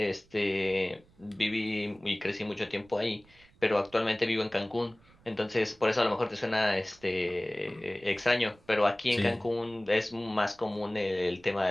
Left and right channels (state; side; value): noise; right; rumble, 29 dB below the sound